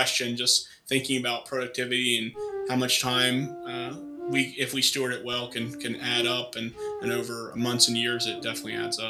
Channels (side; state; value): both; identical; correlation 1.00